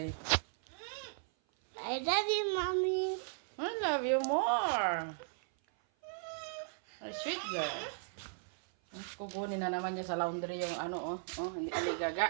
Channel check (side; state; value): left; silent; 53 dB below the other